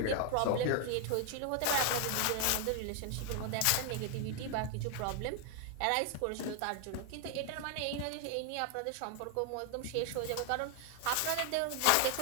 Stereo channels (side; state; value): both; different; correlation 0.00